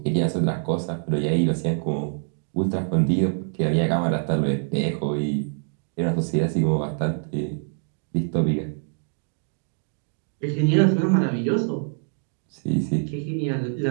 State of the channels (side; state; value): left; silent; 59 dB below the other